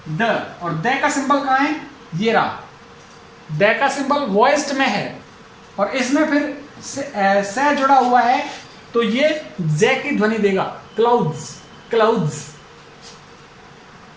द, और द का सिंबल कहां है? ये रहा। द का सिंबल वॉइस्ड में है और इसमें फिर से जुड़ा हुआ है तो ये जे की ध्वनि देगा, क्लाउड्स। क्लाउड्स।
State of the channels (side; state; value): both; identical; correlation 1.00